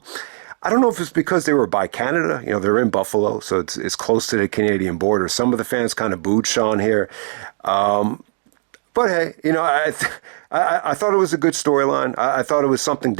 don't know if it's because they were by Canada. They're in Buffalo, so it's close to the Canadian border. Some of the fans kind of booed Shawn here. But hey, I thought it was a good storyline. I thought it was something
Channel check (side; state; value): left; silent; digital silence